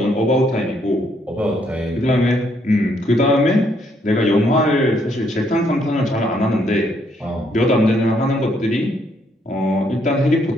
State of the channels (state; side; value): normal; both; correlation 0.71